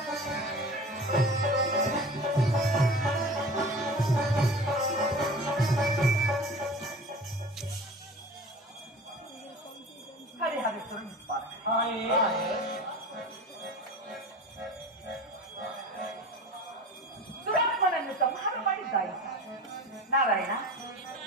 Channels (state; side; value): normal; both; correlation 0.37